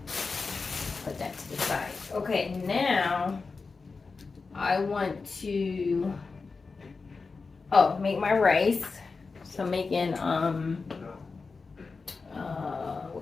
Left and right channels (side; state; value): right; quieter; 4.4 dB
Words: Put that to the side. Okay, now I want to make my rice. So I'm making what